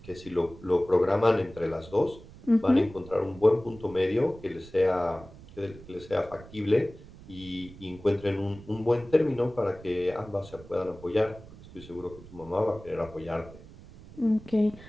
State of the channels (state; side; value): noise; right; rumble, 19 dB below the sound